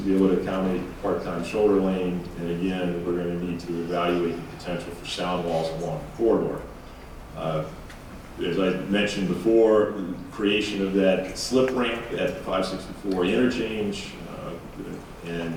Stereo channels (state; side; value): identical; both; correlation 1.00